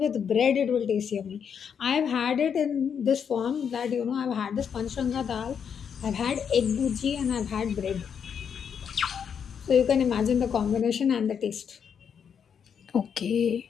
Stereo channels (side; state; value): right; quieter; 7.4 dB